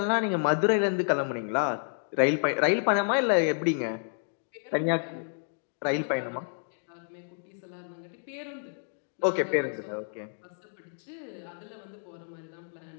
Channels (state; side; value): silent; right; digital silence